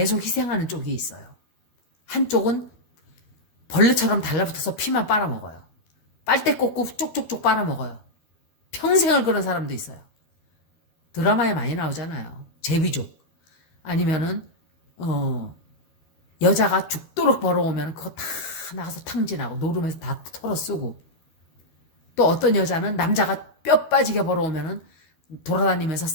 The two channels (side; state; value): right; late; 12 ms